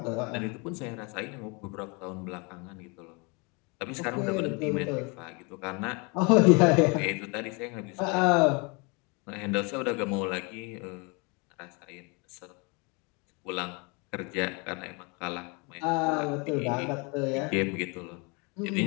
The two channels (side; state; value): right; quieter; 30.4 dB